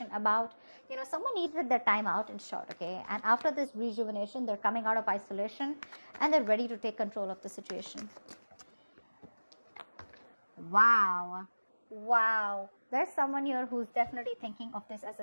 about. Someone needed their time out, in short, okay? And after this rejuvenation, they're coming out of isolation and they're ready to take control of the situation. Wow. There's someone here who's definitely thinking of this as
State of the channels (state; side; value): inverted; both; correlation -1.00